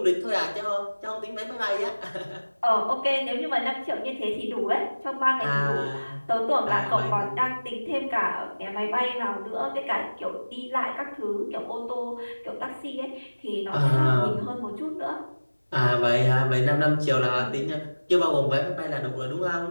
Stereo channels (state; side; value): inverted; both; correlation -1.00